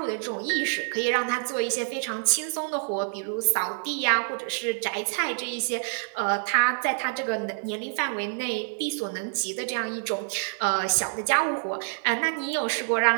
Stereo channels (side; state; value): left; silent; 59 dB below the other